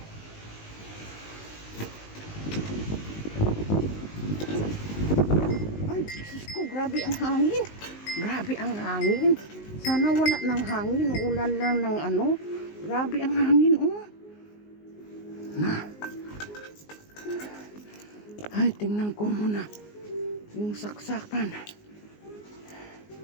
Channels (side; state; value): right; late; 19 ms